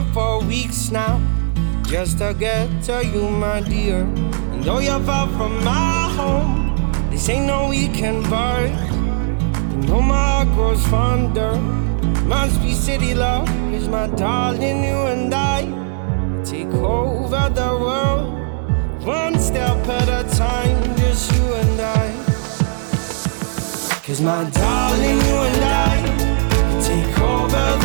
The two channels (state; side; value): silent; left; 60 dB below the other